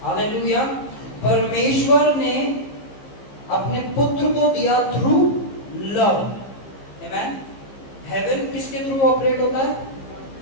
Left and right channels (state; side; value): late; right; 15 ms